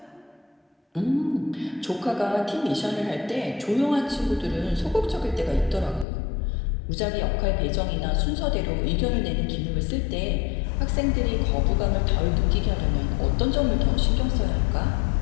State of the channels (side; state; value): right; drops out; at 6.1 s